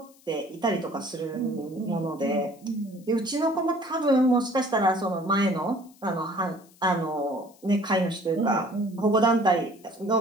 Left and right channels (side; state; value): left; noise; hiss, 28 dB below the sound